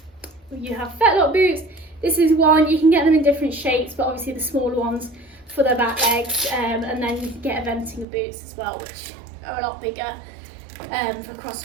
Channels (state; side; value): drops out; left; at 8.1 s